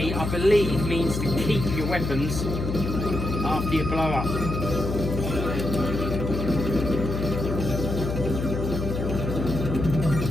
I believe, means to keep your weapons after you blow up.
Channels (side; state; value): left; noise; hum, 3 dB below the sound